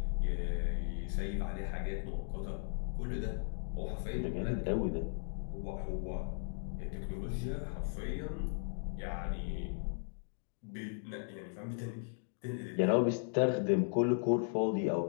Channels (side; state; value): right; silent; digital silence